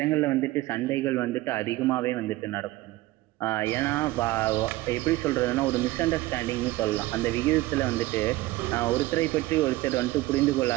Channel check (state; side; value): quieter; left; 18.2 dB